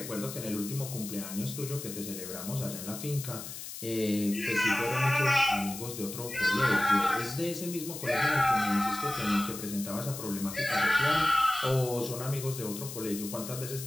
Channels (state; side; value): noise; left; hiss, 10 dB below the sound